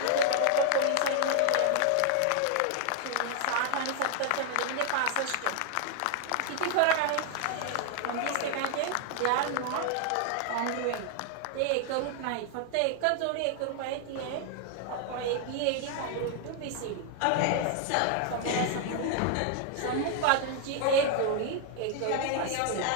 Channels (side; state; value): both; different; correlation 0.00